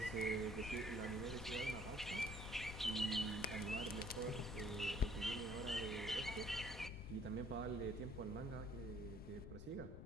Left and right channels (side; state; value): left; noise; rumble, 10 dB below the sound